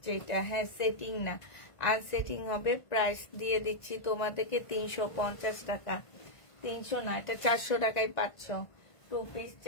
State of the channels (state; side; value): late; right; 1.5 ms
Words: এটা। হ্যাঁ, সেটিং না, আনসেটিং হবে। প্রাইস দিয়ে দিচ্ছি তোমাদেরকে 350 টাকা। 300 না, এটা 400 টাকায় পাচ্ছ। 2 পিস